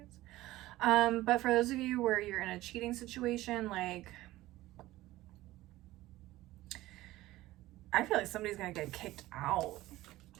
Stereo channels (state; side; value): quieter; left; 16.9 dB